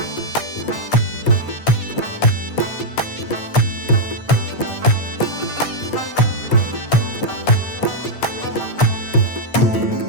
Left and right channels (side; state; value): right; late; 8.7 ms